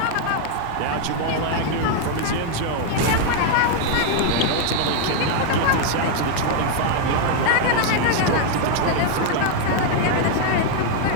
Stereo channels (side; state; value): both; different; correlation 0.00